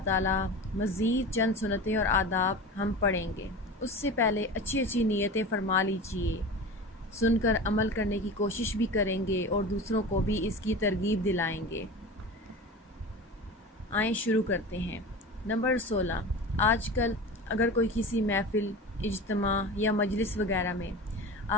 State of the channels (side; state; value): both; normal; correlation 0.31